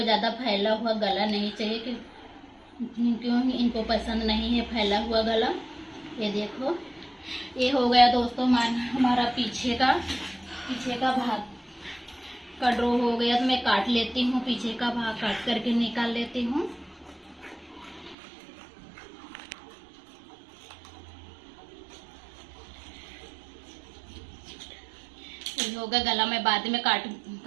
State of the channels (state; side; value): drops out; left; at 18.2 s